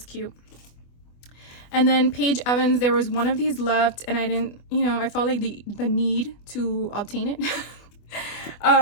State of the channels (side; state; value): right; late; 24 ms